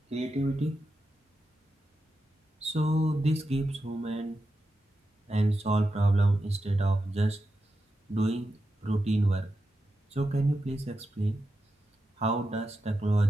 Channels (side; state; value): both; normal; correlation 0.89